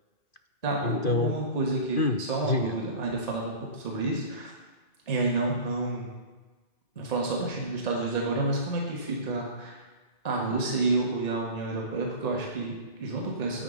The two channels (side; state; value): right; late; 1.9 ms